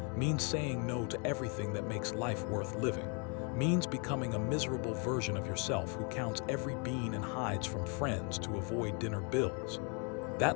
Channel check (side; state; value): right; quieter; 35.4 dB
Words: means saying no to everything that makes life worth living, means becoming a miserable version of yourself who counts every bean and hides from friends to avoid dinner bills.